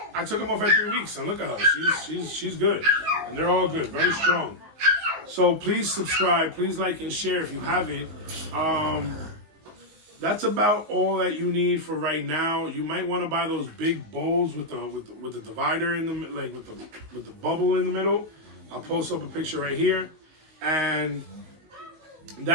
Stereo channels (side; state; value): left; late; 19 ms